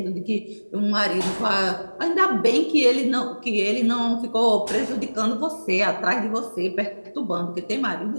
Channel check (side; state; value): both; inverted; correlation -1.00